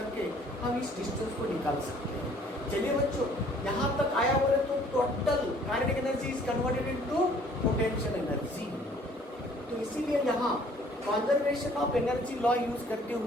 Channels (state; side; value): normal; both; correlation 0.57